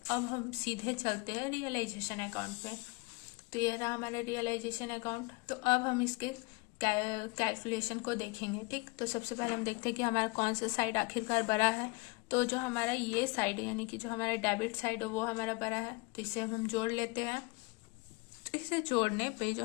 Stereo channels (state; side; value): quieter; right; 27.1 dB